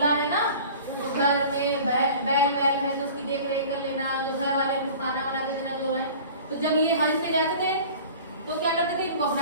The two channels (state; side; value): inverted; both; correlation -0.43